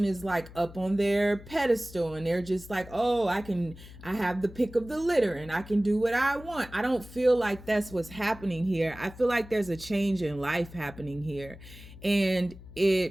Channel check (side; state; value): left; noise; hum, 17 dB below the sound